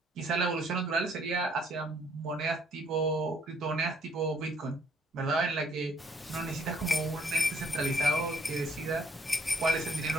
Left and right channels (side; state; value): both; normal; correlation 0.64